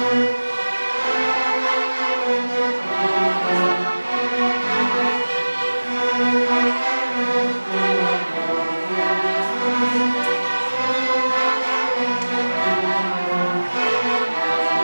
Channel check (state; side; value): inverted; both; correlation -1.00